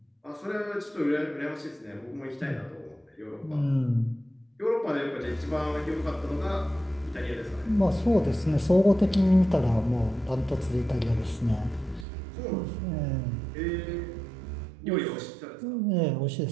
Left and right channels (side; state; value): left; drops out; at 12.1 s